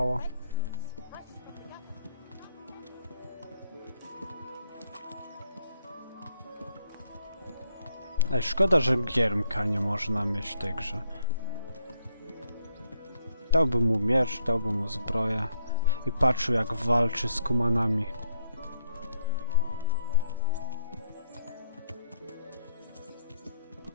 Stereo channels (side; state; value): both; inverted; correlation -0.74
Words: Ej, szkoda, że giermka nie można mieć w tej grze. Dałbym mu miecz, dałbym mu zbroję i patrzył, jak walczy z kumanami.